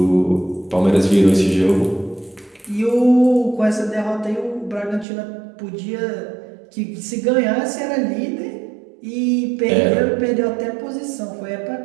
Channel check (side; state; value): left; drops out; at 5.1 s